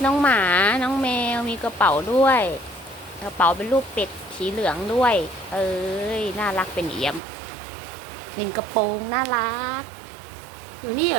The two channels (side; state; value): left; drops out; at 7.2 s